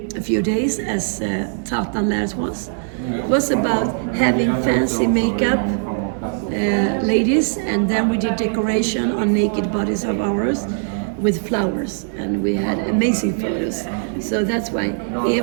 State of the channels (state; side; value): silent; left; 64 dB below the other